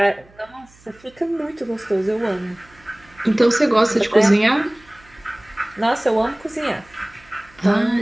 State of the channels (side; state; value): right; noise; hum, 28 dB below the sound